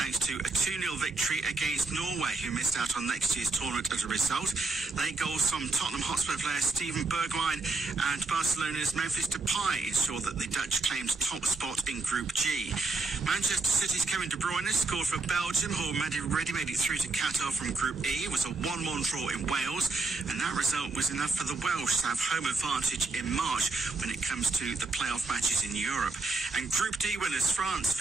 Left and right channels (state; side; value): quieter; left; 3.6 dB